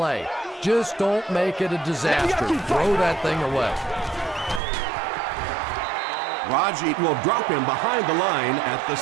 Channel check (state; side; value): drops out; left; at 4.6 s